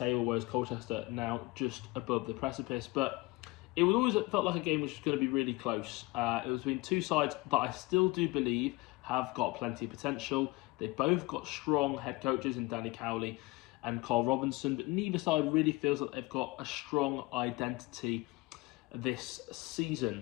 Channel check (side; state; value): right; quieter; 22.6 dB